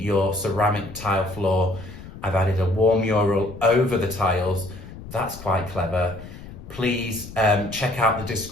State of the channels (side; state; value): left; noise; rumble, 14 dB below the sound